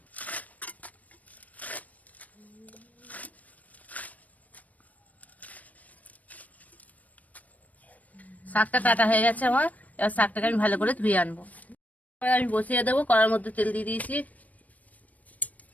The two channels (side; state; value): right; late; 0.072 ms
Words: শাকটা কাটা হয়ে গেছে আমার, এবার শাকটাকে আমি ভালো করে ধুয়ে আনবো। এবার আমি বসিয়ে দেবো, কড়ার মধ্যে তেল দিয়ে দিয়েছি।